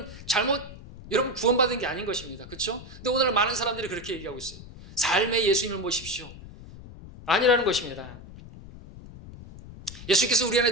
구원받은 게 아닌 것입니다. 그렇죠? 근데 오늘 많은 사람들이 그렇게 얘기하고 있어요. 삶에 예수님을 모십시오. 아니라는 것입니다. 예수께서 우리 안에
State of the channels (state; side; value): noise; left; rumble, 16 dB below the sound